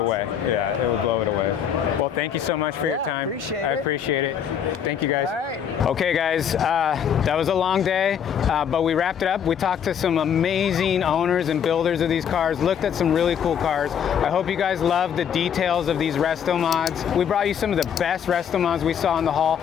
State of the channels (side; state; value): right; quieter; 8.3 dB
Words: Yeah, it would blow it away. Well, thank you so much for your time. I appreciate it. Thank you guys. All right. Okay guys, that was a long day, but we wrapped it up. We talked to some amazing owners and builders of these cars, looked at some really cool cars. I hope you guys love the details of these RestoMods. We brought you some of the best RestoMods we saw in the haul.